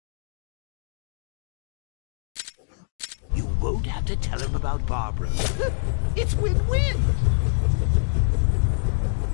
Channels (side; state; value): right; silent; digital silence